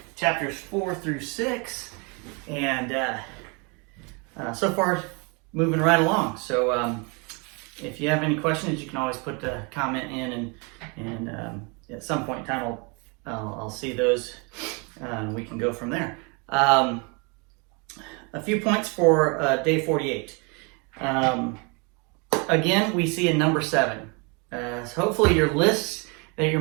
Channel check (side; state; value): left; quieter; 32.1 dB